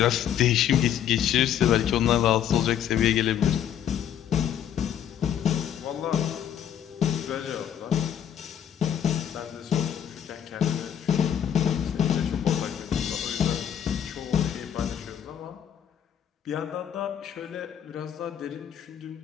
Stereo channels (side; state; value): right; quieter; 9.6 dB